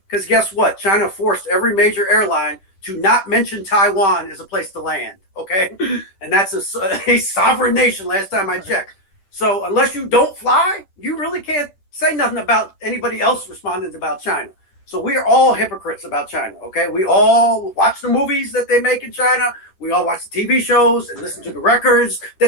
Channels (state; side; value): late; right; 10 ms